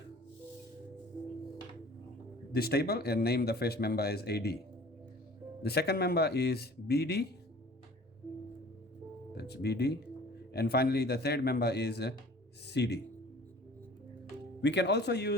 this table and name the first member as AD. The second member is BD. That's BD. And finally the third member is CD. We can also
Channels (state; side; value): normal; both; correlation 0.48